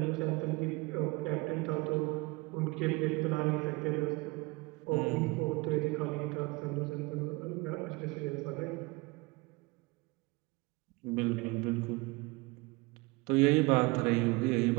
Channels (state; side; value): quieter; left; 25.1 dB